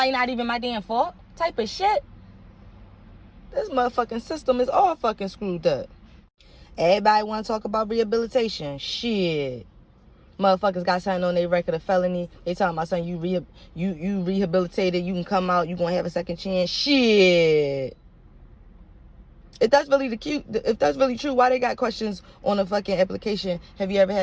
not even my damn fault. Type of shit. This motherfucking system is all fucking screwed up. Everybody want to talk about rehabilitation. Shit. Motherfuckers got something on their record of felony. They talking about something, you rehabilitated, you can come out, you gonna have a second chance. Shit. If that's really true, why they got questions on the fucking application? Have you ever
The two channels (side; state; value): both; identical; correlation 1.00